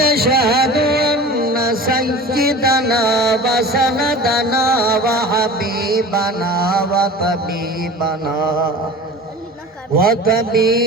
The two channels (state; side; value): normal; both; correlation 0.38